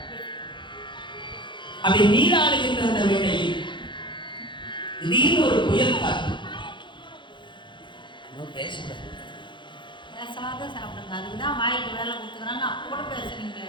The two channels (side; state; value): right; late; 0.23 ms